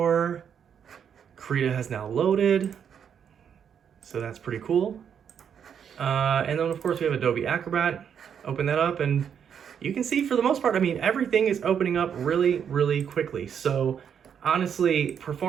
Krita has now loaded. So that's pretty cool. And then, of course, we have Adobe Acrobat. Open that up, and you can see, for the most part, I mean, everything is opening up really, really quickly. So honestly,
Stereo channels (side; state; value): left; quieter; 7.9 dB